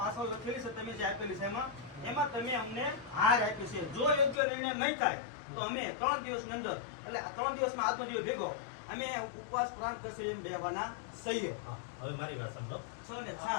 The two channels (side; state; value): right; drops out; at 4.4 s